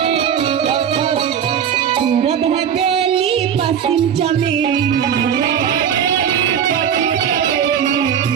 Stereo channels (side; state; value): left; quieter; 8.5 dB